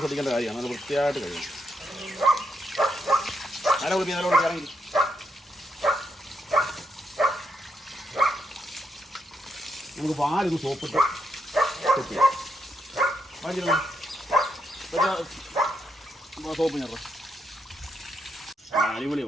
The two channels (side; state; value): both; normal; correlation 0.80